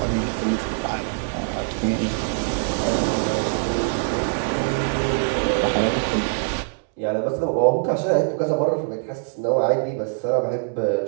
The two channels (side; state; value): left; silent; digital silence